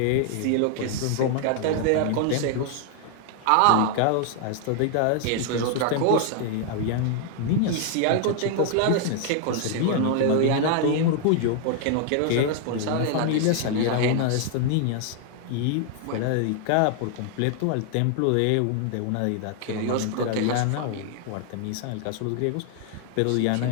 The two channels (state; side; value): different; both; correlation 0.00